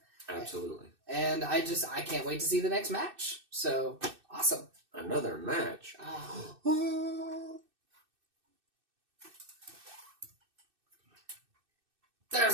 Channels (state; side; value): late; left; 2.6 ms